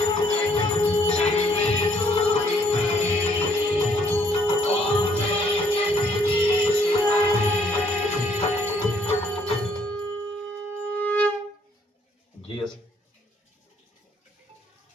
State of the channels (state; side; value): normal; both; correlation 0.66